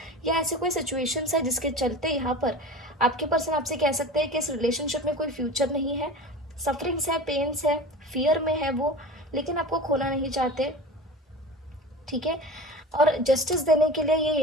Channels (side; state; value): both; normal; correlation 0.34